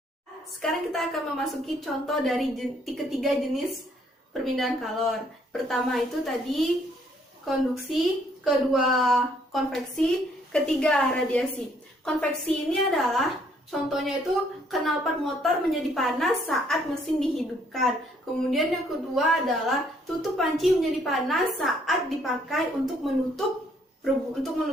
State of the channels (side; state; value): both; normal; correlation 0.66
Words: Sekarang kita akan memasuki contoh dari ketiga jenis perpindahan kalor. Pertama itu tadi konduksi, kedua konveksi, ketiga radiasi. Konveksi ini adalah contohnya itu knalpot motor menjadi panas saat mesin dihidupkan. Kemudian yang kedua adalah tutup panci menjadi panas saat dipakai untuk menutup